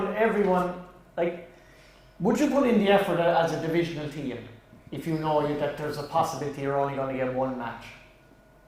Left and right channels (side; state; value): both; identical; correlation 1.00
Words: like, would you put in the effort as a divisional team if you know that there's a possibility you're only going to get one match?